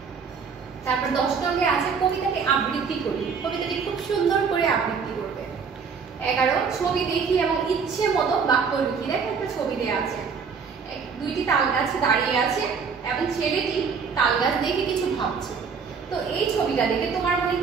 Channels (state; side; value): quieter; left; 5.8 dB